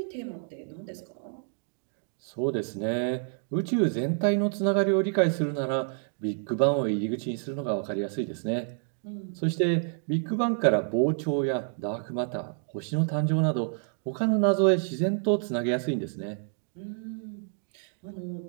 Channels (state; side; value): silent; left; 59 dB below the other